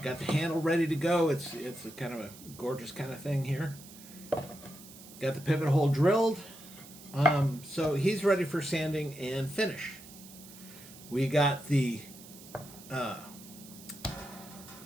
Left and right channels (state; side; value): noise; right; hiss, 18 dB below the sound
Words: Got the handle ready to go. It's a kind of a gorgeous kind of thing here. Got the pivot hole drilled. So he's ready for sanding and finish. We got the